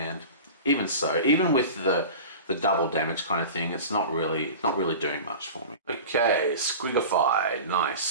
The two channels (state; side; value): inverted; both; correlation -0.34